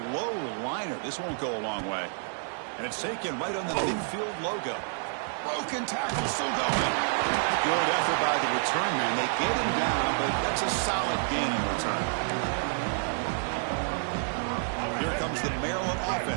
low liner. This won't go a long way. And it's taken right on the midfield logo. Broken tackle, still going. Good effort by the return man. They get him down, but that's a solid gain in return. Here comes the Maryland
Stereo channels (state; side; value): silent; left; digital silence